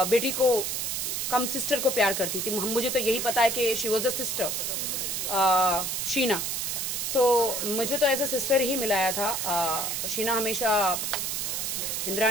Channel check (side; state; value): right; noise; hiss, 1 dB below the sound